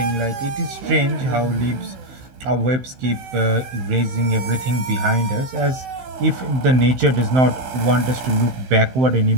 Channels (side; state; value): left; late; 15 ms